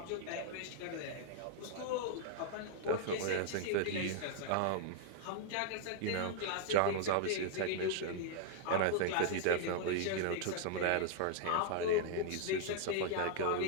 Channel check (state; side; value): different; both; correlation 0.00